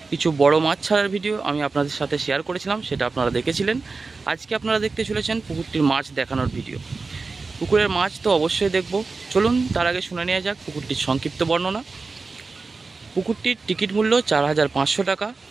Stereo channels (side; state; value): left; quieter; 4.1 dB